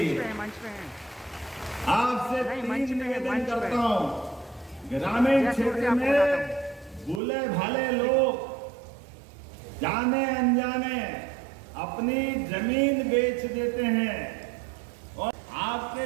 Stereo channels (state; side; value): drops out; left; at 7.2 s